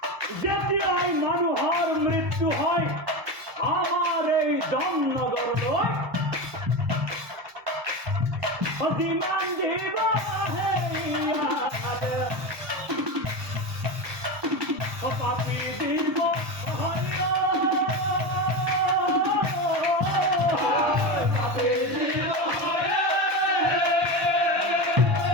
যেতিয়াই মানুহৰ মৃত্যু হয় আমার এই জমনগর নয় অতিমান দিব পাপি দিব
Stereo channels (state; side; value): late; left; 1.2 ms